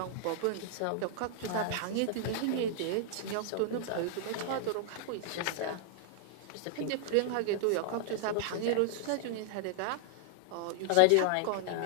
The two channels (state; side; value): different; both; correlation 0.00